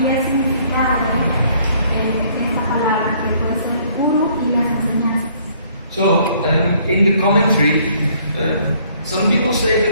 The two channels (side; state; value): both; inverted; correlation -0.62